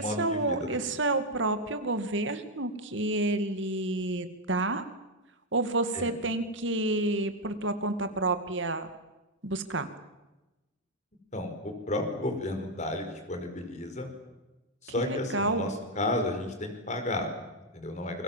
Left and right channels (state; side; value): normal; both; correlation 0.03